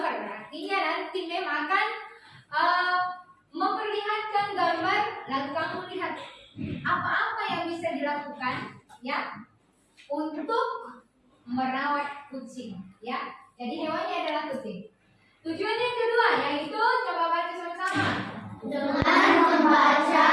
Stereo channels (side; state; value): both; identical; correlation 1.00